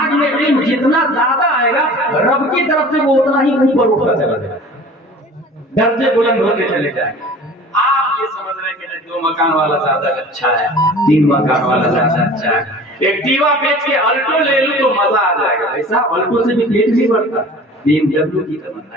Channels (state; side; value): normal; both; correlation 0.43